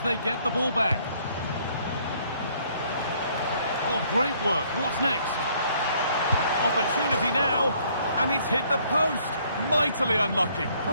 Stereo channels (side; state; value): both; inverted; correlation -0.64